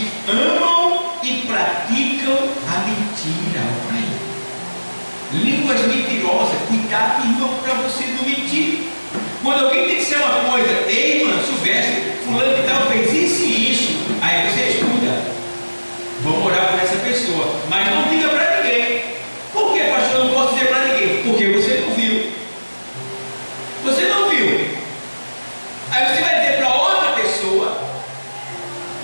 amam e praticam a mentira. Olha aí. Línguas mentirosas. Cuidado, irmão, para você não mentir. Quando alguém tem que ser uma coisa, ei, irmã, Silvestre, fulano de tal fez isso e isso. Aí você escuta. Vamos orar por essa pessoa. Mas não diga para ninguém. Por que, pastor, eu não posso dizer para ninguém? Porque você não viu. Você não viu. Aí você vai dizer para outra pessoa,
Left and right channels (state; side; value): inverted; both; correlation -1.00